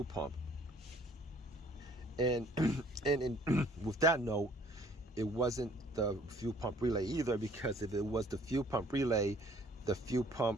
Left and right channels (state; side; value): normal; both; correlation 0.58